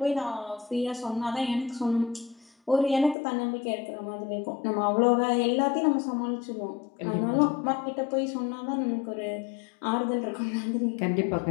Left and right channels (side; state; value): right; drops out; at 3.2 s